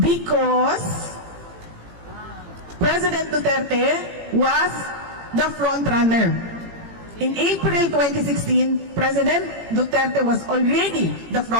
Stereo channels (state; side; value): late; left; 18 ms